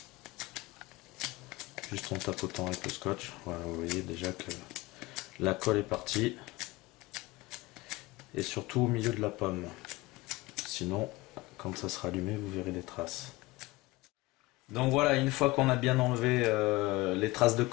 Juste en tapotant avec le scotch. Voilà, vous voyez déjà que la colle est partie. Et surtout au milieu de la pomme. Sinon, quand ça sera allumé, vous verrez des traces. Donc voilà, une fois qu'on a bien enlevé les traces de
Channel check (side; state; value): right; quieter; 21.1 dB